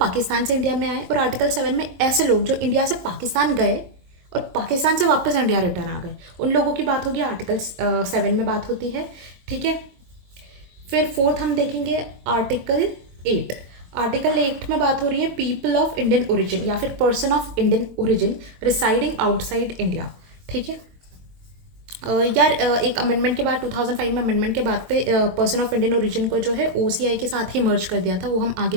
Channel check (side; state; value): left; late; 22 ms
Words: से इंडिया में आए, और आर्टिकल 7 में ऐसे लोग जो इंडिया से पाकिस्तान गए और पाकिस्तान से वापस इंडिया रिटर्न आ गए, उन लोगों की बात होगी आर्टिकल 7 में बात होती है। ठीक है, फिर फोर्थ हम देखेंगे आर्टिकल 8। आर्टिकल 8 में बात हो रही है पीपल ऑफ इंडियन ओरिजिन या फिर person of Indian origin residing outside India. ठीक है, यार एक अमेंडमेंट के बाद 2005 में अमेंडमेंट के बाद पे पर्सन ऑफ इंडियन ओरिजिन को जो है ओसीआई के साथ ही मर्ज कर दिया था, वो हम